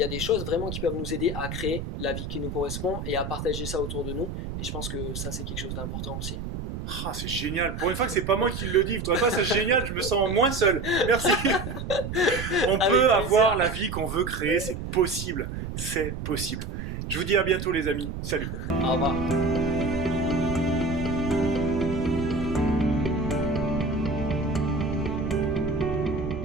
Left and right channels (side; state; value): right; noise; rumble, 6 dB below the sound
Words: a des choses vraiment qui peuvent nous aider à créer la vie qui nous correspond et à partager ça autour de nous. Et je pense que ça, c'est quelque chose d'important aussi. Ah, c'est génial. Pour une fois que c'est pas moi qui le dis, toi, c'est génial, je me sens moins seul. Merci. On peut avoir la vie qu'on veut créer, c'est possible. C'est possible. Je vous dis à bientôt, les amis. Salut. Au revoir.